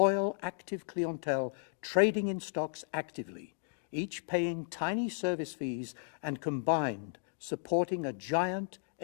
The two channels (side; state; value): right; silent; digital silence